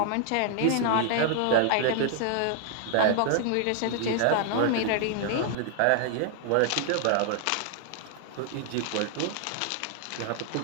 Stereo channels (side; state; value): both; different; correlation 0.00